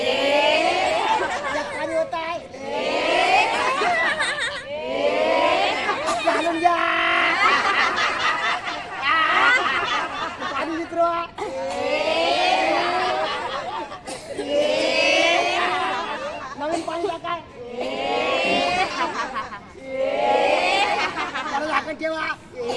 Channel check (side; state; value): both; identical; correlation 1.00